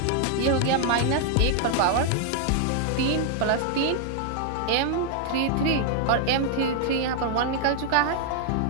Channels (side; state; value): both; different; correlation 0.00